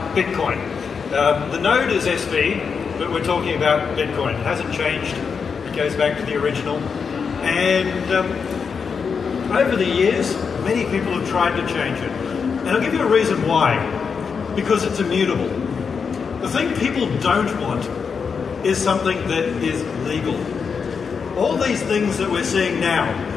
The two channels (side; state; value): right; quieter; 5.9 dB